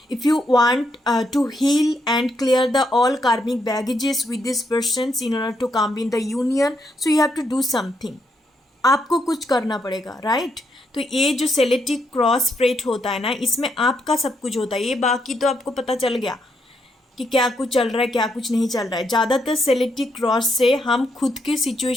if you want to heal and clear the all karmic baggages with this persons in order to come in the union, so you have to do something, आपको कुछ करना पड़ेगा, right. तो ये जो सेलेटिक cross spread होता है ना, इसमें आपका सब कुछ होता है। ये बाकी तो आपको पता चल गया कि क्या कुछ चल रहा है, क्या कुछ नहीं चल रहा है। ज़्यादातर सेलेटिक क्रॉस से हम खुद के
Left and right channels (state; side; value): normal; both; correlation 0.78